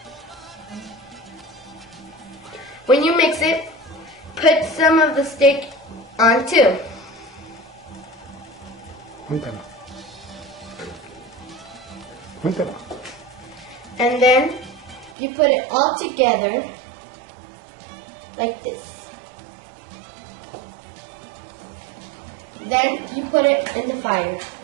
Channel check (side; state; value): left; drops out; at 15.2 s